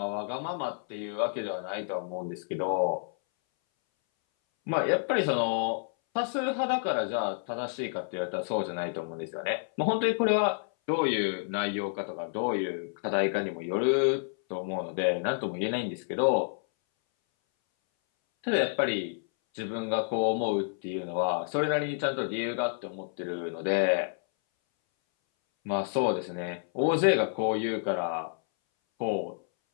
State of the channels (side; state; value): right; silent; 58 dB below the other